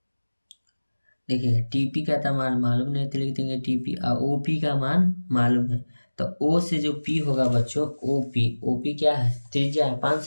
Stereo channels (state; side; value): inverted; both; correlation -1.00